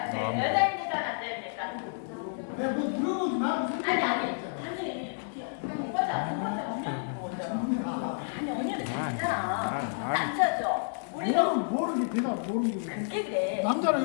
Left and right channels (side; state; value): right; silent; digital silence